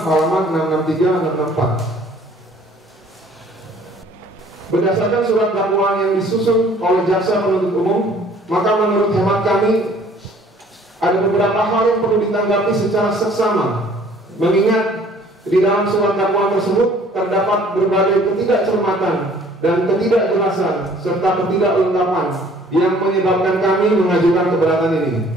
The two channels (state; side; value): normal; both; correlation 0.56